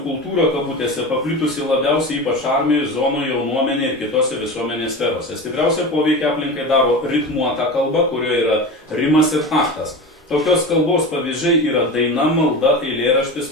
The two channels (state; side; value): normal; both; correlation 0.28